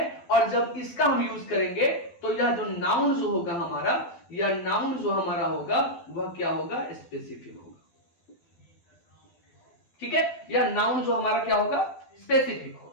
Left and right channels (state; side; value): late; right; 12 ms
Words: और जब इसका हम यूज करेंगे तो यह जो नाउन जो होगा हमारा, यह नाउन जो हमारा होगा वह क्या होगा, स्पेसिफिक होगा, ठीक है। यह नाउन जो हमारा क्या होगा, स्पेसिफिक होगा।